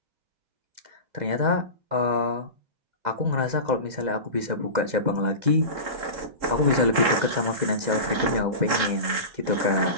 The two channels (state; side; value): late; left; 3.7 ms